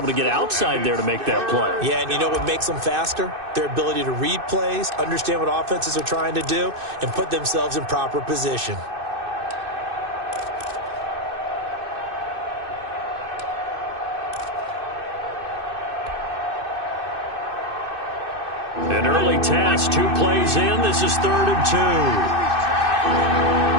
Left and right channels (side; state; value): left; late; 2.6 ms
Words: to get outside there to make that play. Yeah, and you know what makes them faster? Their ability to read plays, understand what offenses are trying to do, and put themselves in proper position. An early task, 2 plays in. This is 3rd and 2.